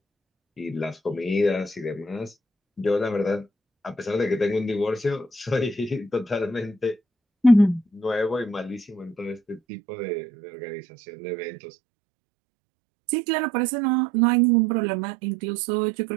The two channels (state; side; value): drops out; left; at 9.6 s